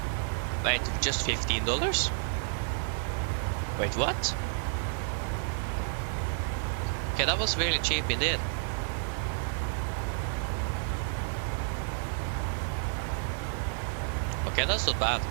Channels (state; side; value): silent; left; digital silence